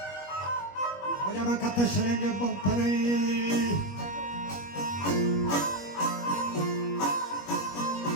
وجا من کت شلنگ بم پره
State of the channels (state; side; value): late; right; 21 ms